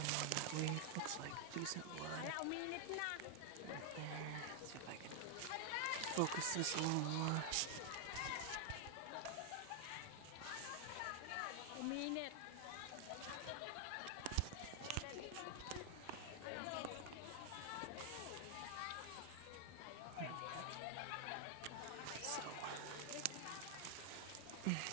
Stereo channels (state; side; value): different; both; correlation 0.00